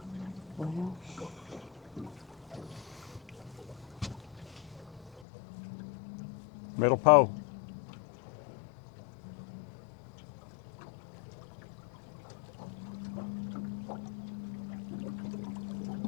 Well, Middle pole.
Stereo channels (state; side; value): drops out; right; at 5.2 s